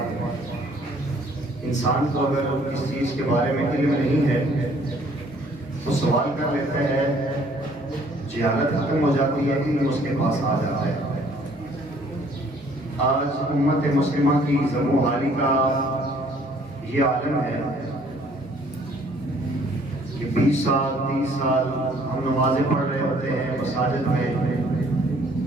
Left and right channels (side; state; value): both; normal; correlation 0.60